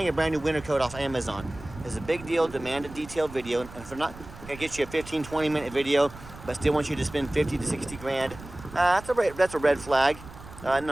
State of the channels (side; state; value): right; noise; rumble, 16 dB below the sound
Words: a brand new winter coat off Amazon. It's a big deal. Demand a detailed video. And if we're not gonna get you a 15-20 minute video, but still want you to spend 50 to 60 grand, that's a red flag.